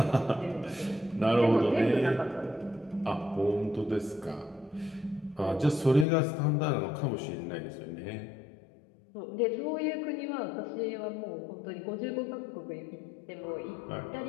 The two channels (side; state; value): right; drops out; at 6.1 s